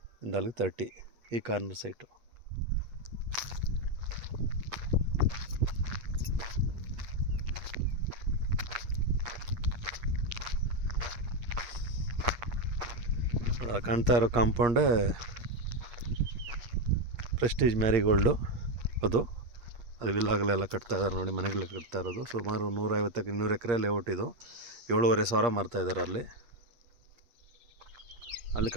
ಇಂದ ಅಲ್ಲಿಗೆ 30 ಈ ಕಾರ್ನರ್ ಸೈಟು. ಕಾಣ್ತಾ ಇರೋ ಕಾಂಪೌಂಡೇ ಪ್ರೆಸ್ಟೀಜ್ ಮ್ಯಾರಿಗೋಲ್ಡು. ಅದು ವಿಲ್ಲಾಗಲೆಲ್ಲ ಕಟ್ತಾ ಇದ್ದಾರೆ ನೋಡಿ, ಮನೆಗಳೆಲ್ಲ ಕಟ್ತಾ ಇರೋದು. ಸುಮಾರು 150-200 ಎಕರೆ ಲೇಔಟ್ ಇದು. 7,500 ಮಾರ್ತಾಯಿದ್ದಾರೆ ಅಲ್ಲಿ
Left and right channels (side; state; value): left; late; 8.4 ms